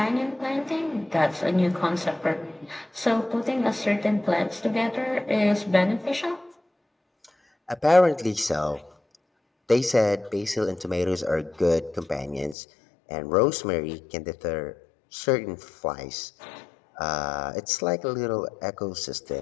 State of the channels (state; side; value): drops out; right; at 12.6 s